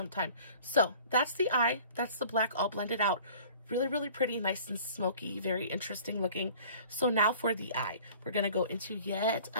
So that's the eye. That's the black all blended out. Really, really pretty, nice and smoky, very interesting looking. So now for the eye, we're going to go into yet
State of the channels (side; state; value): both; inverted; correlation -0.47